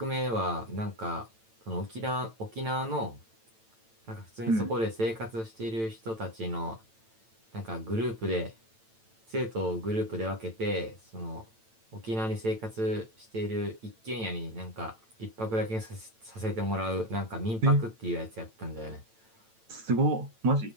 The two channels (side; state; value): left; late; 9.0 ms